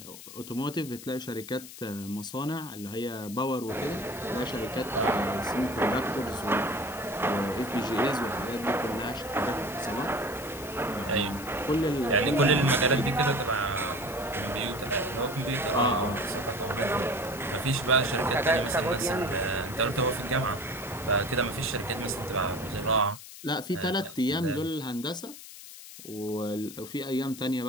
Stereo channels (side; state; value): left; noise; hiss, 14 dB below the sound